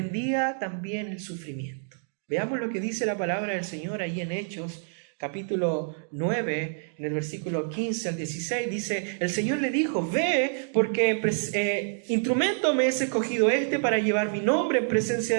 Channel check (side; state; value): left; silent; digital silence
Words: también el sufrimiento. Veamos lo que dice la palabra del Señor ahí en Hechos, capítulo 9, en el versículo 15 al 16, dice, el Señor le dijo, ve, porque instrumento me es escogido para llevar mi nombre en presencia